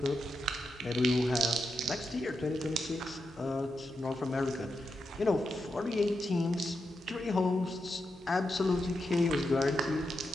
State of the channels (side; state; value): both; normal; correlation 0.86